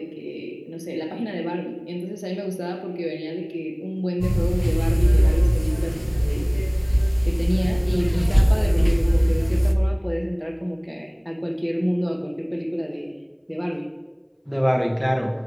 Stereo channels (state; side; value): identical; both; correlation 1.00